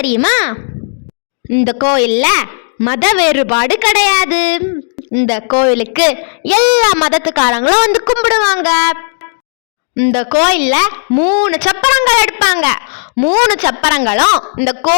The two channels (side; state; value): right; silent; digital silence